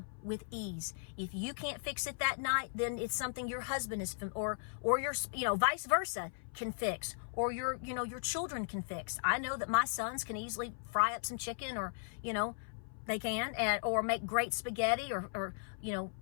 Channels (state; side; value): silent; right; 53 dB below the other